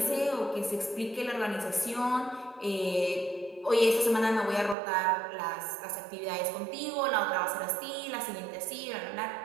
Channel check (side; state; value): left; drops out; at 4.8 s